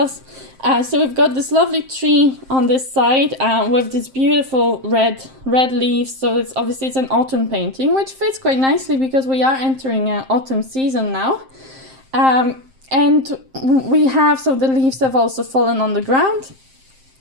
So we've got this lovely tree on this side with this beautiful red leaves. So it's obviously it's an autumn painting, which fits quite nicely because we are entering autumn season now. And we have, so the leaves have also fallen on the ground.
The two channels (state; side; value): late; left; 7.6 ms